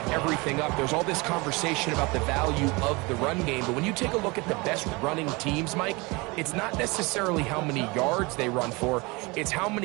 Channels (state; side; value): quieter; left; 25.8 dB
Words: everything up. There's all this conversation about the value of the run game, but when you take a look at the best running teams, Mike, it's not necessarily how many yards they run for, it's how